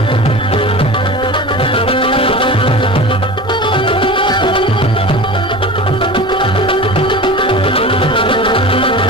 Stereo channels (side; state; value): both; normal; correlation 0.33